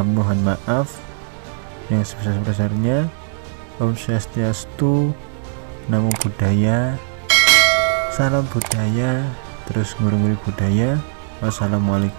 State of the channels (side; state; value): left; silent; digital silence